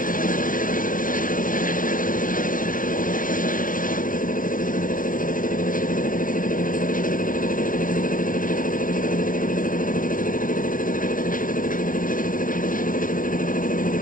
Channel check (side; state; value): right; late; 0.40 ms